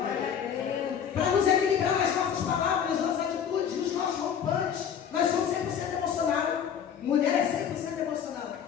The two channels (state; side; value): quieter; right; 8.2 dB